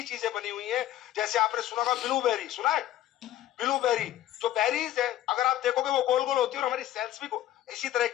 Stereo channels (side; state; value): right; quieter; 13.3 dB